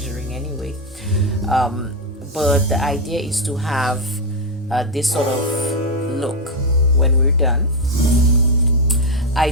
anyway. But the idea is to have this sort of look when we're done. I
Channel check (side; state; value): both; normal; correlation 0.04